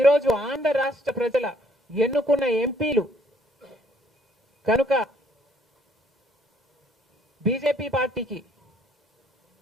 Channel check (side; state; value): both; normal; correlation 0.65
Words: ఆంధ్ర రాష్ట్ర ప్రజల ఎన్నుకున్న ఎంపీలు కనుక బీజేపీ పార్టీకి